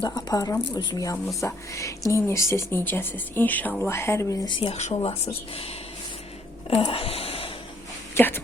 Aparıram özüm yanımıza. Neyinirsiniz, necəsiz? İnşallah hər biriniz yaxşı olasınız.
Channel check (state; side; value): normal; both; correlation 0.67